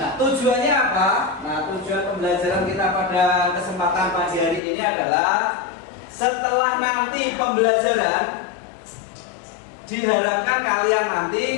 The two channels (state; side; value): drops out; right; at 4.6 s